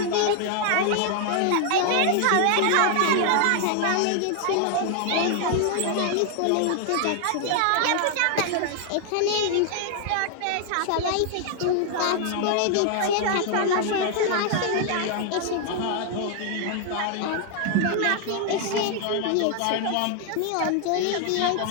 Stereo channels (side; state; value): both; different; correlation 0.00